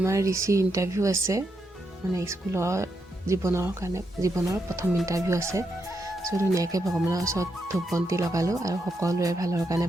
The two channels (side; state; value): both; normal; correlation 0.82